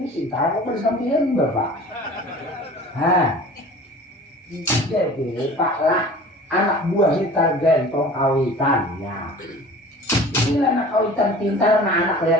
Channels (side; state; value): both; normal; correlation 0.42